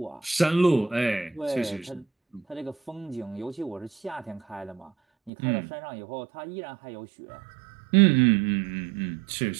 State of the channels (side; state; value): left; drops out; at 5.3 s